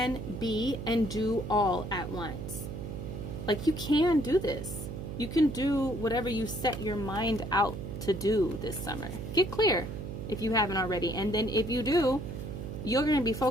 be and do all at once. Like you can do this. You can do whatever you set your mind out to do this summer. Get clear if you haven't already. And then if you do, you're going to be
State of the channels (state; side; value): noise; right; hum, 7 dB below the sound